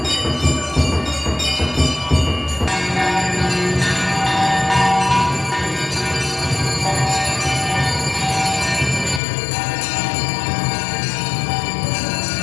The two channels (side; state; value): right; drops out; at 9.2 s